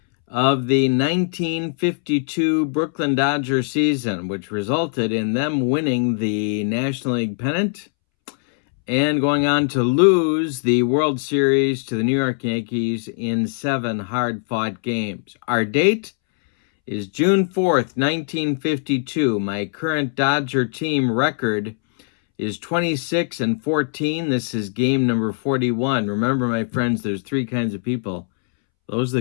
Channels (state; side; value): silent; right; 65 dB below the other